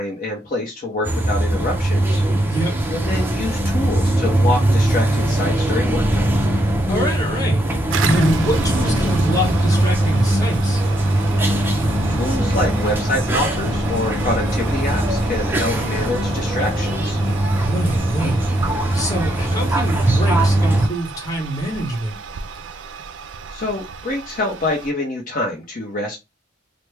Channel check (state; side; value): normal; both; correlation 0.76